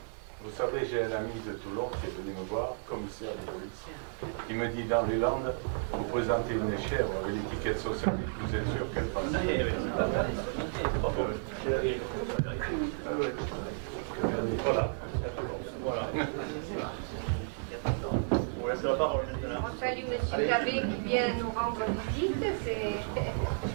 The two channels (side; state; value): left; silent; 56 dB below the other